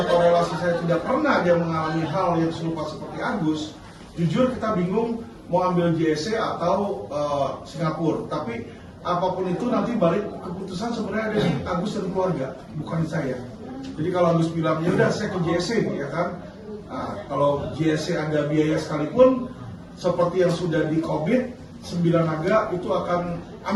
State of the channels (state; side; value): identical; both; correlation 1.00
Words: atau relasi saya tidak pernah dia mengalami hal yang serupa seperti Agus, jujur kita bingung mau ambil JSC atau Singapura. Tapi apapun itu nanti balik keputusan sebenarnya ada di Agus dan keluarga, bukan saya. Jadi kalau Agus bilang ya udah saya ke JSC ya kan. Nah, kalau JSC ada biaya sekalipun seperti yang sudah di COVID, 9 naga itu akan